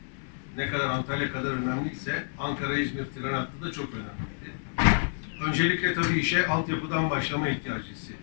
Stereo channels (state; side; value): silent; right; digital silence